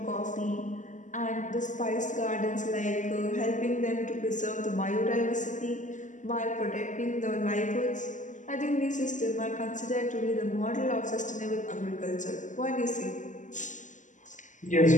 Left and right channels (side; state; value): right; late; 0.37 ms